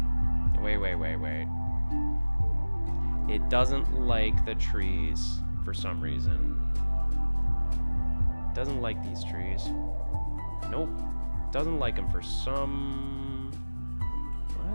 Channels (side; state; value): both; inverted; correlation -1.00